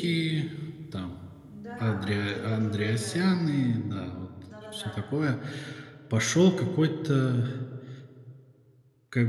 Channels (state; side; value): identical; both; correlation 1.00